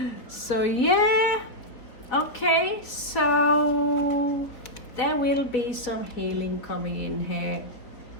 So yeah, okay, so there will be some healing coming in here.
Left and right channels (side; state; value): right; late; 3.9 ms